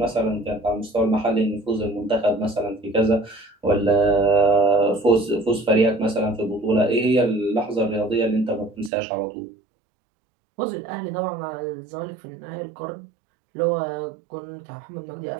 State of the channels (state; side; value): drops out; left; at 8.9 s